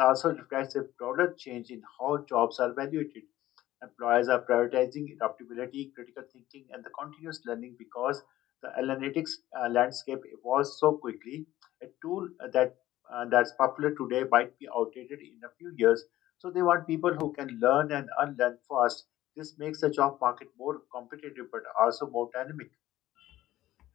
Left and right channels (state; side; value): quieter; right; 14.9 dB